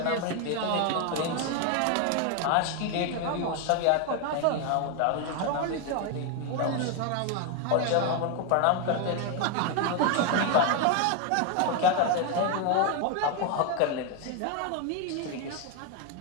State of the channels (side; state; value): both; different; correlation 0.01